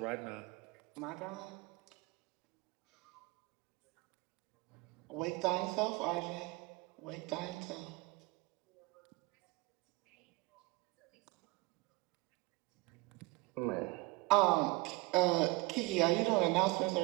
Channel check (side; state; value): left; quieter; 23.3 dB